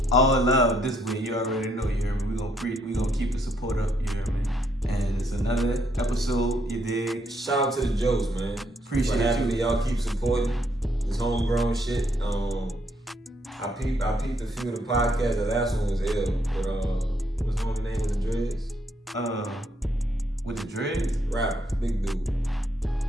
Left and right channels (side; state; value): both; normal; correlation 0.72